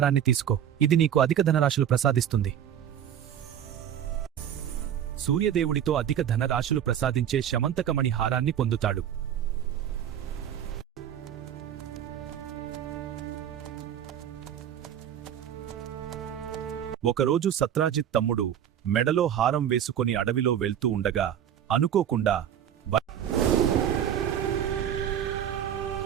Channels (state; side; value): quieter; left; 9.7 dB